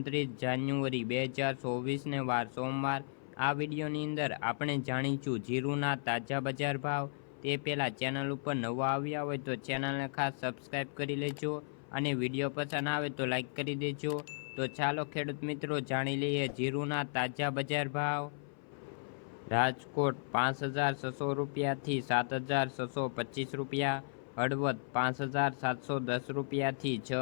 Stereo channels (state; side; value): silent; right; 54 dB below the other